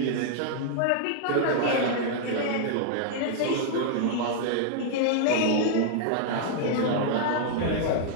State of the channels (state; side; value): different; both; correlation -0.01